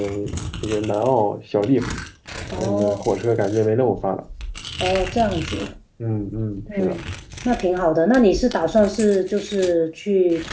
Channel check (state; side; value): identical; both; correlation 1.00